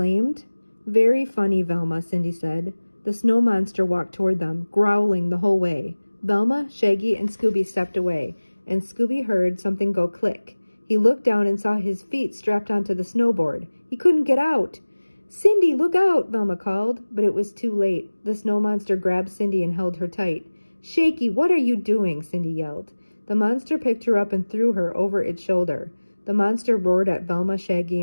"Very funny, Velma," Cindy said. The snow monster walked toward them, growling the whole way. Velma, Shaggy, and Scooby stepped away, and Scooby heard something go click. He looked down and saw his feet strapped onto the snowboard. He couldn't get out. "Cindy, look out!" Velma called, but it was too late. The snow monster grabbed Cindy and held her tight. "Shaky, what are you doing?" Cindy yelled. The monster picked her up and threw her over its shoulder. The monster roared at Velma, Shaggy,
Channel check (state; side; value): inverted; both; correlation -1.00